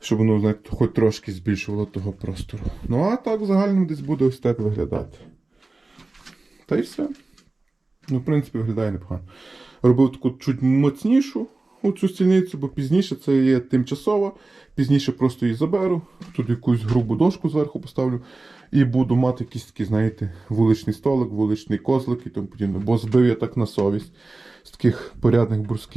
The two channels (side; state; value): left; quieter; 3.2 dB